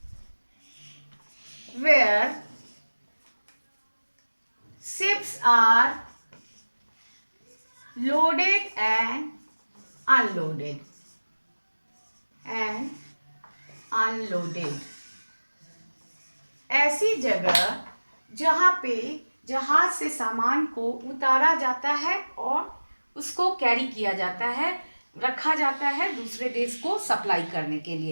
where ships are loaded and unloaded and unloaded. ऐसी जगह जहाँ पे जहाज से सामान को उतारा जाता है और उसको कैरी किया जाता है, रखा जाता है दूसरे देश को सप्लाई करने के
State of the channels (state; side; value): inverted; both; correlation -1.00